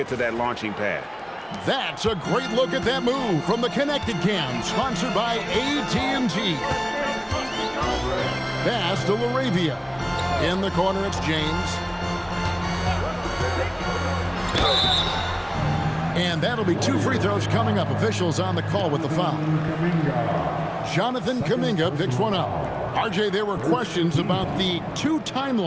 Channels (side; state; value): both; identical; correlation 1.00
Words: to that launching pad. That's a great look at that move from the Connected Cam, sponsored by AT&T. Pass to LaRavia. In the corner, it's James. And that'll be 2 free throws coming up. Officials on the call with the foul. Jonathan Kuminga picks one up. RJ, there were questions about the 2